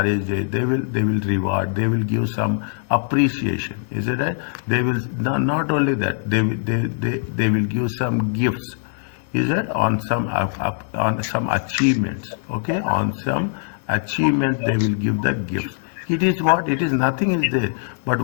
day. They will reward. They will give some appreciation. Is it right? They will not only that. They will give some gifts. Is it on some on some achievements? Okay, on some achievements they will give the gifts. It is what it is. Nothing is there. But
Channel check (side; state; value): right; silent; digital silence